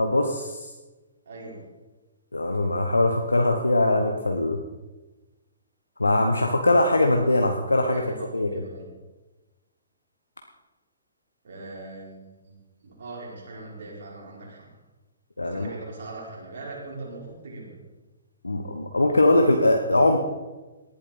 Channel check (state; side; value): inverted; both; correlation -0.84